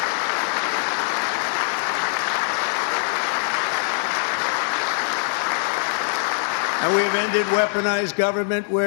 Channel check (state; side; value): silent; right; digital silence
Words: And we have ended weaponized government